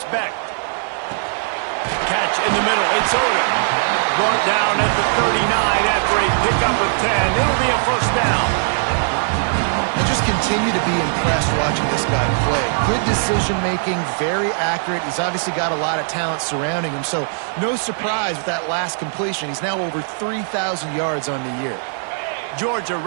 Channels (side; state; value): left; silent; 57 dB below the other